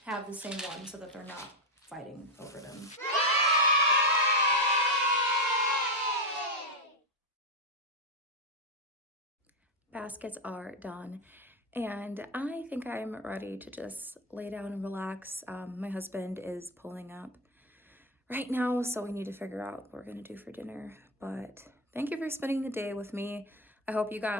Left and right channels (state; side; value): normal; both; correlation 0.07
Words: have the same one so that they're not fighting over them. Baskets are done, and I think I'm ready to just lay down and relax. My husband is pulling up right now, so we need to figure out what we're gonna do for dinner. But thank you for spending the day with me. I hope you